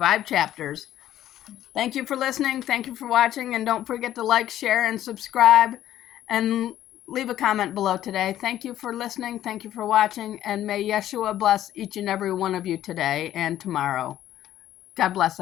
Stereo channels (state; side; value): quieter; right; 12.5 dB